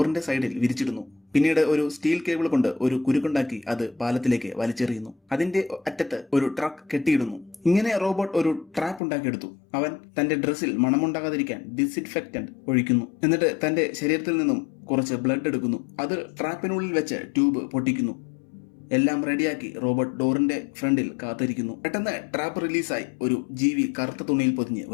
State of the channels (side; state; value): right; drops out; at 9.0 s